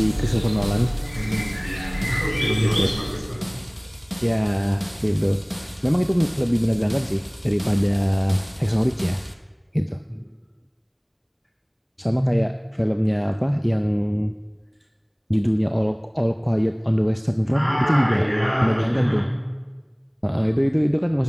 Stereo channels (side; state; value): both; identical; correlation 1.00